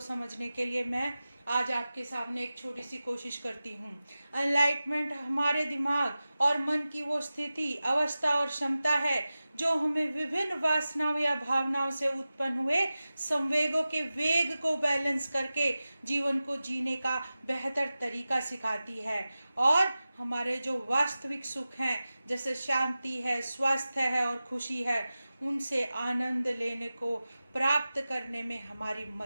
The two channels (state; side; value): inverted; both; correlation -0.95